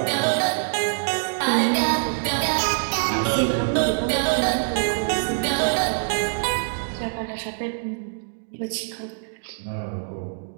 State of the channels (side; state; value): left; silent; digital silence